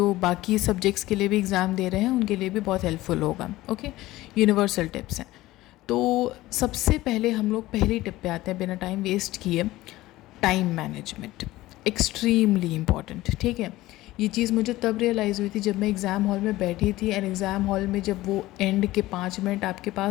बाकी सब्जेक्ट्स के लिए भी एग्ज़ाम दे रहे हैं उनके लिए भी बहुत हेल्पफुल होगा। ओके, यूनिवर्सल टिप्स हैं। तो सबसे पहले हम लोग पहली टिप पे आते हैं बिना टाइम वेस्ट किए। Time management extremely important. ठीक है, ये चीज़ मुझे तब रियलाइज़ हुई थी जब मैं एग्ज़ाम हॉल में बैठी थी। एंड एग्ज़ाम हॉल में जब वो एंड के 5 मिनट आपके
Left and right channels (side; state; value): right; quieter; 17.3 dB